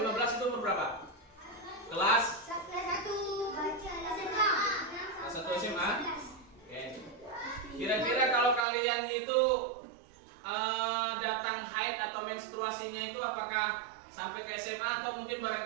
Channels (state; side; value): drops out; left; at 8.7 s